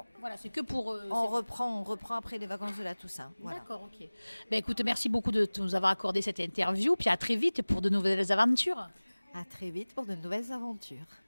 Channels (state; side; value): inverted; both; correlation -1.00